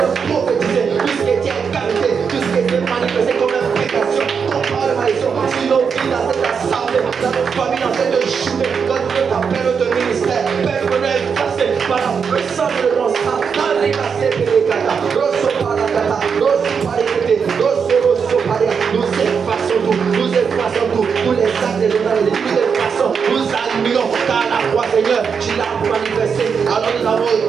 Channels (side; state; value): left; quieter; 6.3 dB